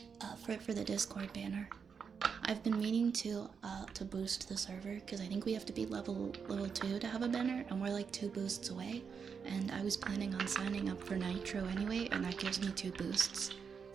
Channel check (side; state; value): left; quieter; 6.2 dB